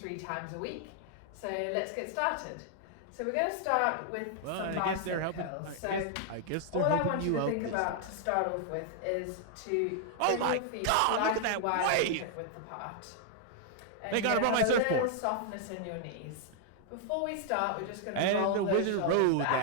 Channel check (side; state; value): both; different; correlation -0.01